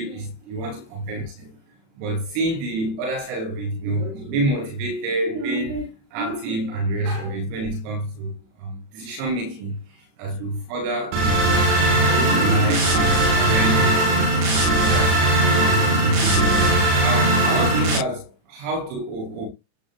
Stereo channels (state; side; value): late; left; 36 ms